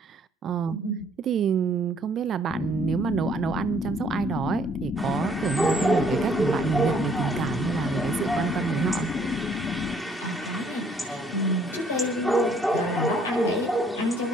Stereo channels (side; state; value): both; normal; correlation 0.63